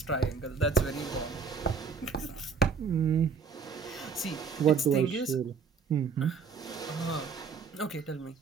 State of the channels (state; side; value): quieter; left; 5.6 dB